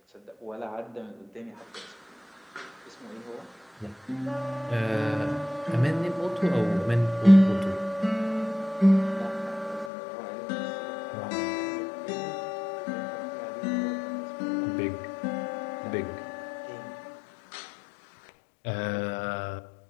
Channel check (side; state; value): right; drops out; at 9.9 s